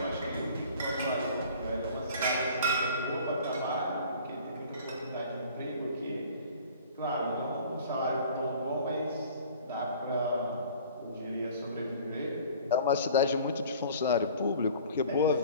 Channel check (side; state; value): both; inverted; correlation -0.47